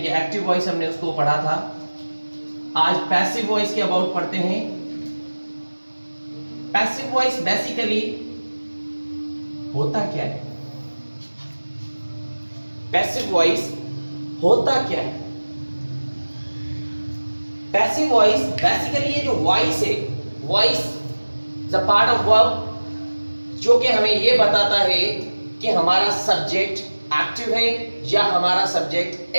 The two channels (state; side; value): inverted; both; correlation -1.00